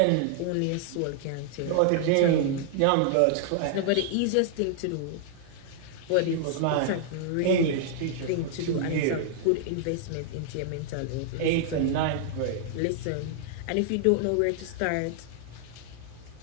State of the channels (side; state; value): both; different; correlation -0.01